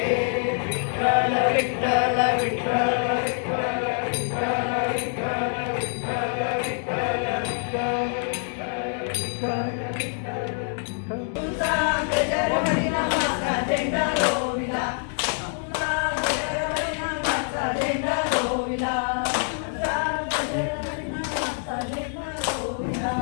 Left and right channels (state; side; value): silent; right; 58 dB below the other